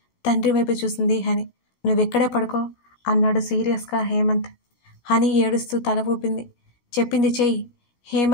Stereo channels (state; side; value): late; right; 17 ms